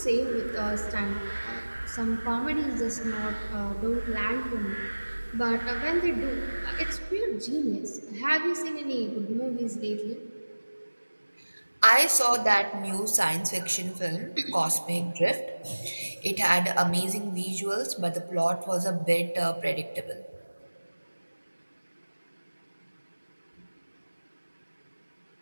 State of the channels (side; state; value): both; inverted; correlation -1.00